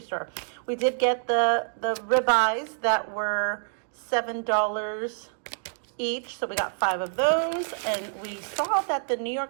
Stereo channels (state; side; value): silent; left; digital silence